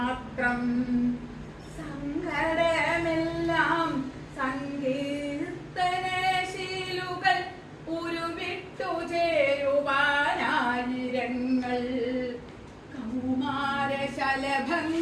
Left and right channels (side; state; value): both; identical; correlation 1.00